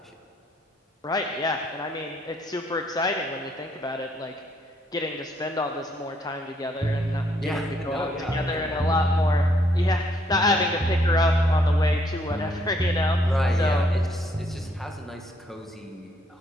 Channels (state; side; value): normal; both; correlation 0.70